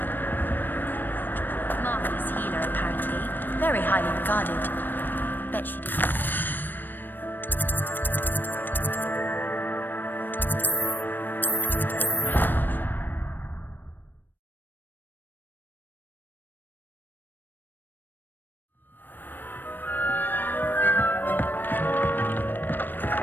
Marvelous healer, apparently. Very highly regarded. Bet she did.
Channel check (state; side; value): late; right; 0.093 ms